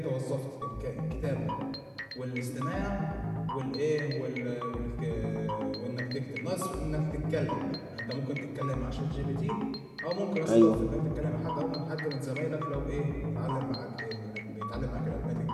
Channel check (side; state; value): both; identical; correlation 1.00